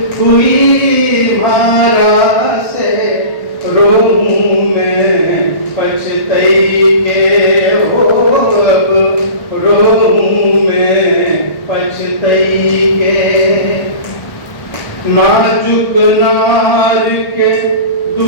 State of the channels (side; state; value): right; late; 1.4 ms